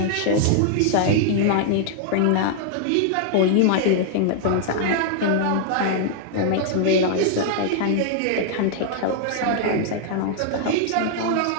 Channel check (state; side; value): different; both; correlation 0.00